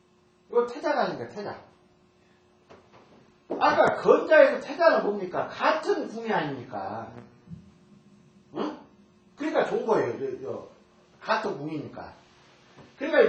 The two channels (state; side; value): identical; both; correlation 1.00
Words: 이거 태자가 아닙니까? 태자. 아까 건자에서 태자는 뭡니까? 같은 궁이 아닙니까? 응? 그러니까 좋은 거예요. 같은 궁이니까.